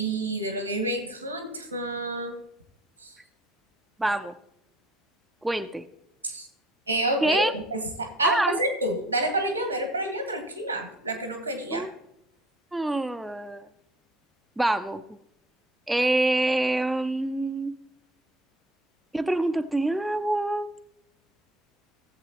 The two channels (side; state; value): both; normal; correlation 0.50